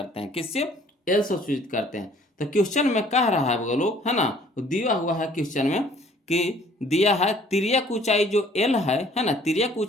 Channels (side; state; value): both; normal; correlation 0.56